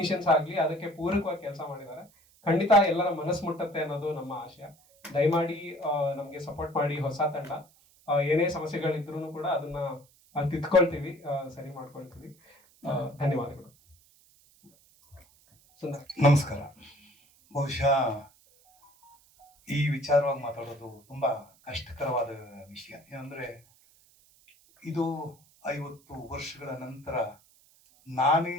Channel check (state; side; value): noise; right; hiss, 30 dB below the sound